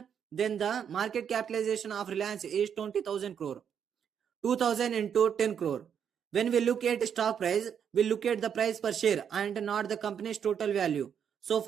then the market capitalization of Reliance is 20,000 crore. 2000 into 10 crore. When we look at stock price, we look at the price per share and not the company's total value. So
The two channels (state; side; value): quieter; left; 8.0 dB